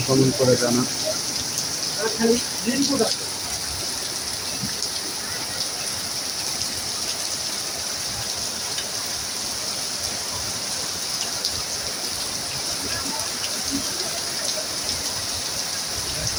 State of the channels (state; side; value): identical; both; correlation 1.00